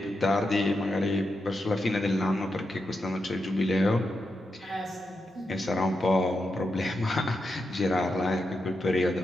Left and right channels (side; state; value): both; normal; correlation 0.86